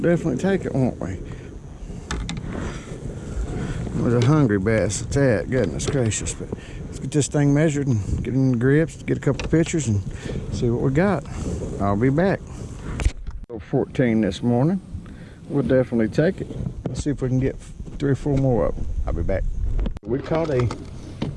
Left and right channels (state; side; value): identical; both; correlation 1.00